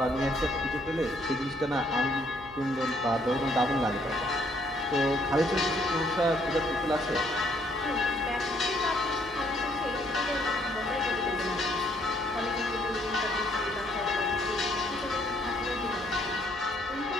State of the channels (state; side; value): noise; right; hum, 21 dB below the sound